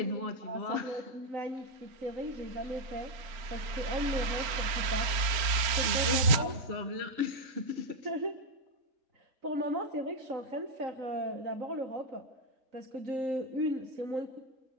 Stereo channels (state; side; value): late; left; 4.3 ms